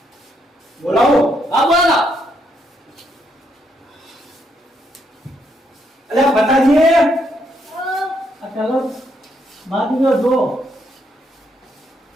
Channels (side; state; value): both; normal; correlation 0.75